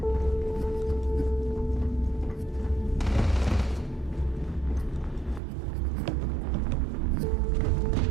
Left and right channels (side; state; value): left; drops out; at 5.4 s